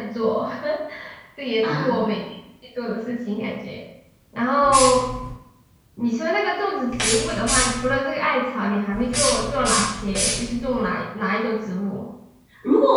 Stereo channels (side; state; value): both; identical; correlation 1.00